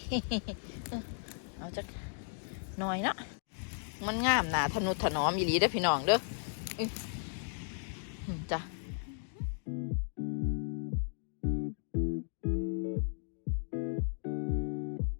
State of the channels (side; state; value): right; silent; digital silence